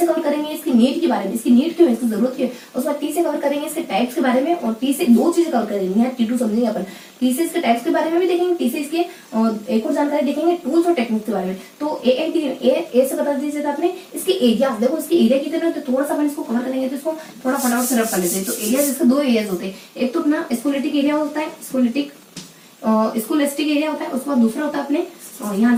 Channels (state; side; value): identical; both; correlation 1.00